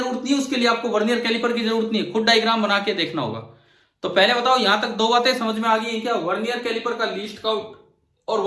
नहीं है, उसके लिए आपको वर्नियर कैलिपर की जरूरत नहीं है, खुद डायग्राम बना के देखना होगा। तो पहले बताओ यहां तक दो बातें समझ में आ गई है क्या? वर्नियर कैलिपर का लीस्ट काउंट और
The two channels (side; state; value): both; identical; correlation 1.00